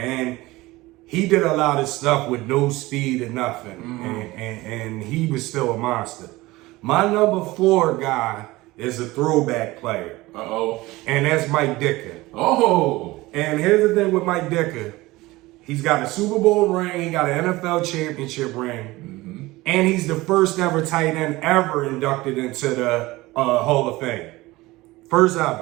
he did a lot of stuff with no speed or nothing, and he was still a monster. My number 4 guy is a throwback player. Uh-oh. And that's Mike Dicken. Oh. And here's the thing with Mike Dicken. He's got a Super Bowl ring, he got an NFL championship ring, and he's the first ever tight end ever inducted into the Hall of Fame. First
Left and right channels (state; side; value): quieter; left; 19.8 dB